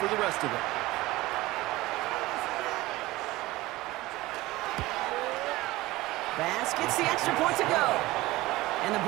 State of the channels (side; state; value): left; quieter; 18.8 dB